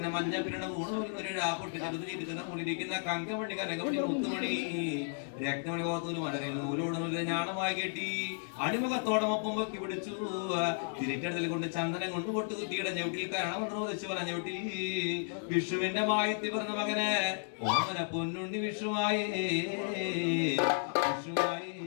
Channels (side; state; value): right; silent; digital silence